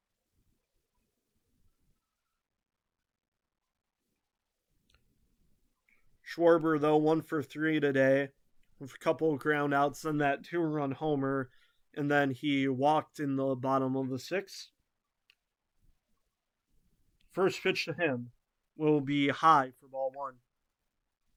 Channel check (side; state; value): both; identical; correlation 1.00